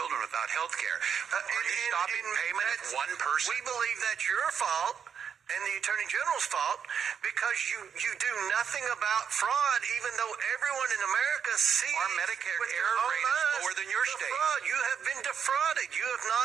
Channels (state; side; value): quieter; left; 7.4 dB